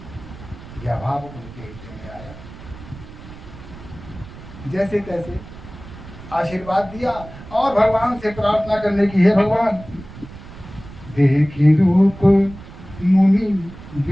यह भाव उनके हृदय में आया। जैसे तैसे आशीर्वाद दिया और भगवान से प्रार्थना करने की, हे भगवान, देखी रूप मुनि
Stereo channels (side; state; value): right; noise; rumble, 16 dB below the sound